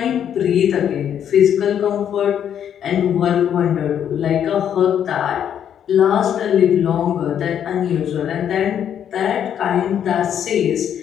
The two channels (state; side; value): quieter; right; 9.2 dB